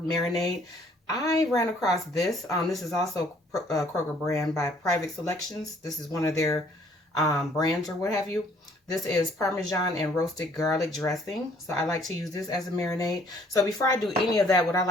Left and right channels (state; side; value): normal; both; correlation 0.61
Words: I ran across this. This is also Kroger brand by Private Selections. This is one of their brands or what have you. This is Parmesan and roasted garlic dressing. So I like to use this as a marinade. So before I do any of that, what I